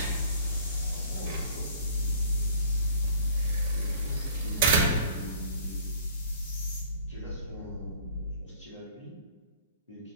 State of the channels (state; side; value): inverted; both; correlation -0.50